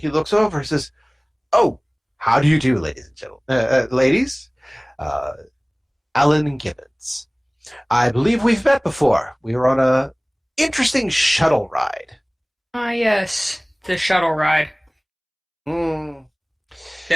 looks over and says, "Oh, how do you do, ladies and gentlemen? Ladies? Alan Gibbons. I believe we've met before. We were on a interesting shuttle ride. Ah, yes, the shuttle ride Hmm.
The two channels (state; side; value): identical; both; correlation 1.00